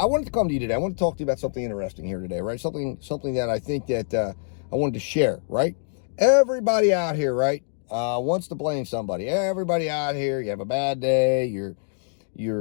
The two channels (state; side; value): silent; right; digital silence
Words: wanted to come to you today. I want to talk to you about something interesting here today, right? Something that I think that I wanted to share, right? Everybody out here, right, wants to blame somebody. Everybody out here, you have a bad day, you're